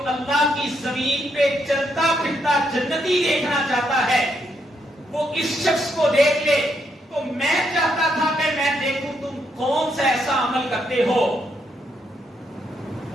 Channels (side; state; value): both; normal; correlation 0.77